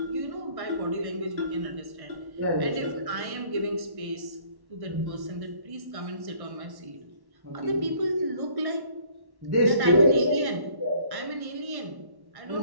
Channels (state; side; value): late; left; 1.1 ms